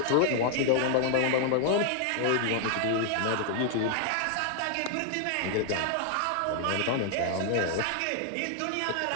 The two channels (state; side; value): different; both; correlation 0.00